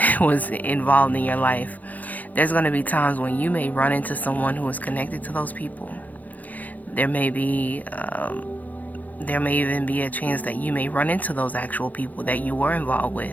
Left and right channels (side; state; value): right; late; 0.079 ms